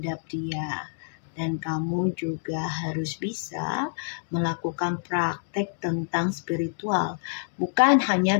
dia. Dan kamu juga harus bisa melakukan praktek tentang spiritual. Bukan hanya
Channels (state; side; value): silent; right; digital silence